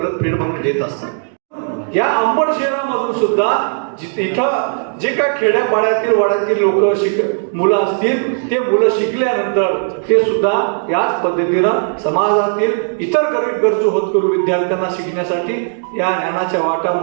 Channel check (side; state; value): left; silent; digital silence